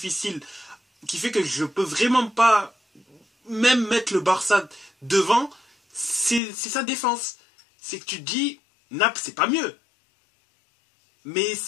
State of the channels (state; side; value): drops out; right; at 6.4 s